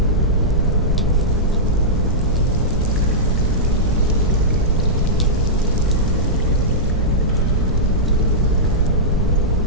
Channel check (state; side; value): normal; both; correlation -0.12